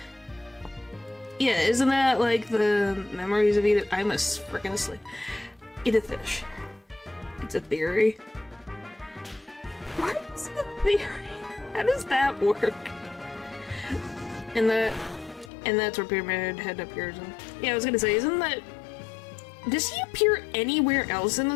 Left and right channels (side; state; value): right; drops out; at 15.5 s